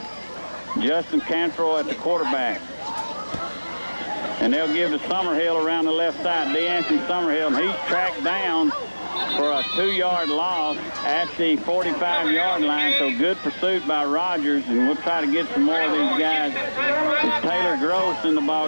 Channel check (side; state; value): both; inverted; correlation -1.00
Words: Justin Cantrell at the quarterback. And they'll give to Summerhill around the left side. DeAnthony Summerhill, and he's tracked down for a 2-yard loss at the 45-yard line. So good pursuit by Rogers, and we'll try to get some more of these guys. It's Taylor Gross in the